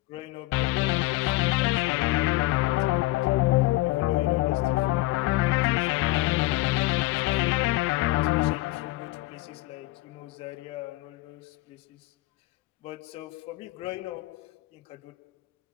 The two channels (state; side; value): quieter; right; 18.9 dB